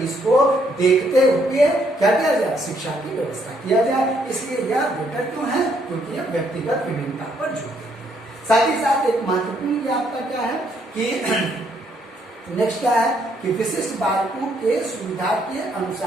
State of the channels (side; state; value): both; normal; correlation 0.71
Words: को देखते हुए क्या किया जाए शिक्षा की व्यवस्था किया जाए। इसलिए यह बेटर क्यों है, क्योंकि यह व्यक्तिगत विभिन्नता पर जोर देती है। साथ ही साथ एक महत्वपूर्ण आपका क्या है कि नेक्स्ट क्या है कि विशिष्ट बालकों के सुविधा के